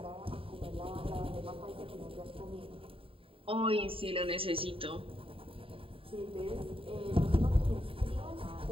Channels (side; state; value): left; late; 0.26 ms